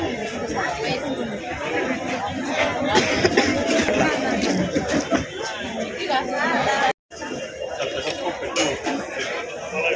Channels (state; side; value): identical; both; correlation 1.00